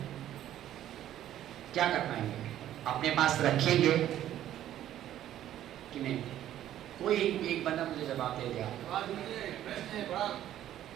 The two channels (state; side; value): quieter; left; 12.1 dB